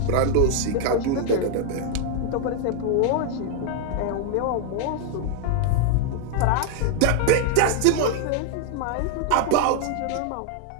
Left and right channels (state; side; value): different; both; correlation 0.00